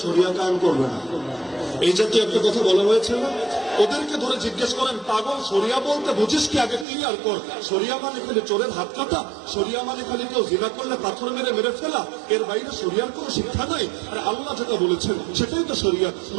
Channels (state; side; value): drops out; left; at 6.9 s